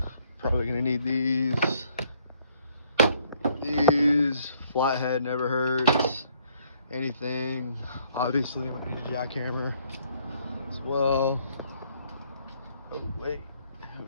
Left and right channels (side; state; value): both; inverted; correlation -0.66